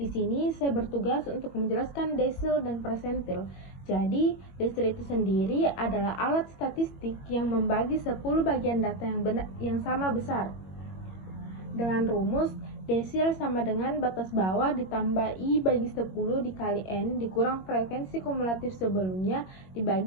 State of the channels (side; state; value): right; late; 21 ms